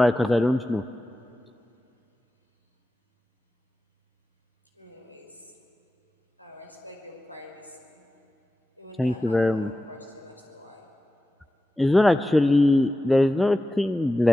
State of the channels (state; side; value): normal; both; correlation 0.95